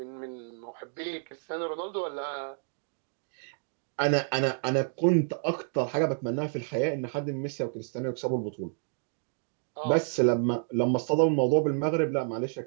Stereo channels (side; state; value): left; silent; 58 dB below the other